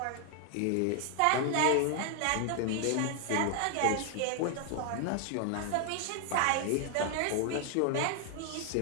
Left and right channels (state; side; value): different; both; correlation 0.00